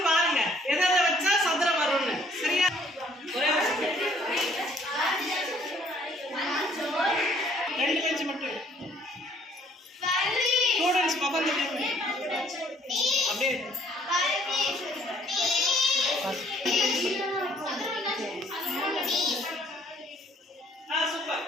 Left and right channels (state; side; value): normal; both; correlation 0.61